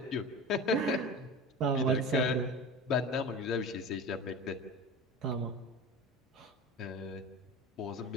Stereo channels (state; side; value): normal; both; correlation 0.31